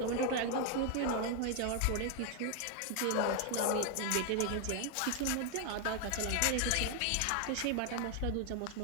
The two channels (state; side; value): different; both; correlation 0.00